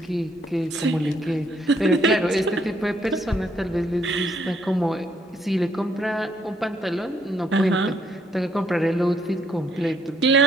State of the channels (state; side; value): normal; both; correlation 0.69